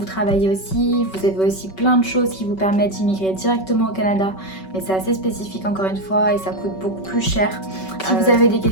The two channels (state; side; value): late; right; 5.3 ms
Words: travaillez aussi. Vous avez aussi plein de choses qui vous permettent d'immigrer directement au Canada, mais c'est assez spécifique encore une fois et ça coûte beaucoup plus cher. Si vous avez des